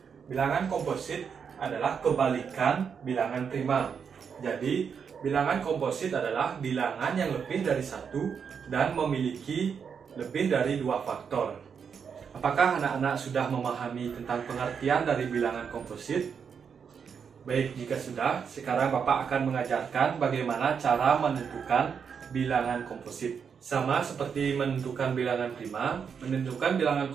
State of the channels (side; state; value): left; quieter; 6.7 dB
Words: Bilangan komposit adalah kebalikan bilangan prima. Jadi, bilangan komposit adalah bilangan yang lebih dari 1 dan memiliki lebih dari 2 faktor. Apakah anak-anak sudah memahami tentang pengertian dari bilangan komposit? Baik, jika sudah, sekarang Bapak akan mengajarkan bagaimana cara menentukan bilangan komposit. Sama seperti menentukan bilangan prima, menentukan bilangan